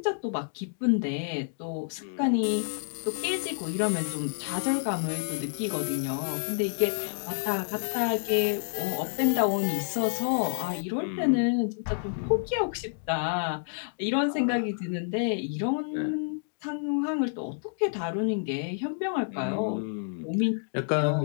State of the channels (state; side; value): silent; right; digital silence